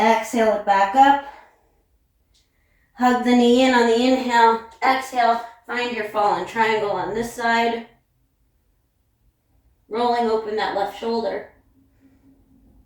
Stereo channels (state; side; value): identical; both; correlation 1.00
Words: it back up. Hug the knee in on the inhale. Exhale, find your fallen triangle on this side. Rolling open that left shoulder.